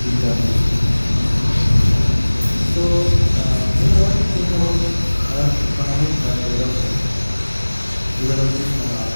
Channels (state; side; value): inverted; both; correlation -1.00